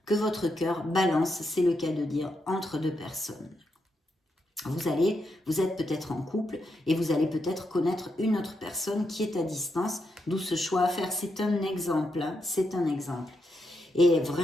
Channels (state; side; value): normal; both; correlation 0.83